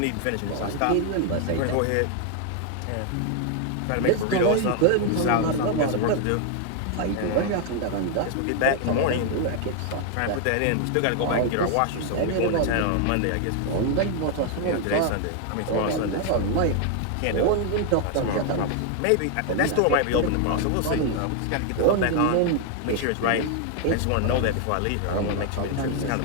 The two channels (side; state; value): both; different; correlation 0.01